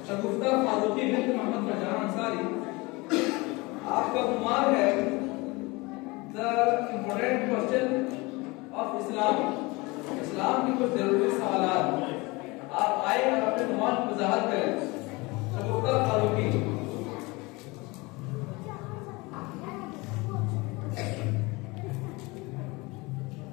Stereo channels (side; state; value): right; quieter; 24.5 dB